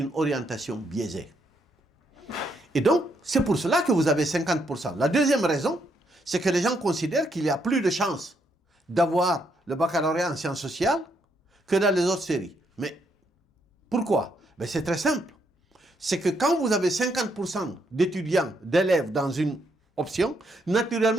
orientation biaisée. Et donc, c'est pour cela que vous avez 50%. La deuxième raison, c'est que les gens considèrent qu'il y a plus de chances d'avoir le baccalauréat en sciences sociales que dans les autres séries. Mais pourquoi? Ben, c'est très simple. C'est que quand vous avez 50% d'étudiants, d'élèves dans une option,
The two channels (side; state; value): both; normal; correlation 0.75